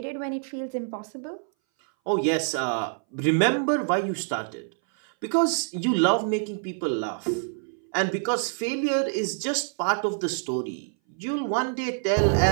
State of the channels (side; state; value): left; silent; 59 dB below the other